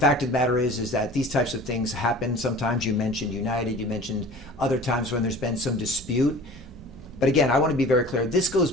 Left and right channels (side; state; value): right; noise; hum, 25 dB below the sound